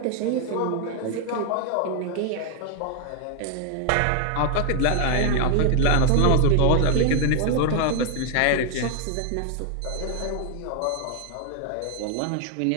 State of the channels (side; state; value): both; different; correlation 0.00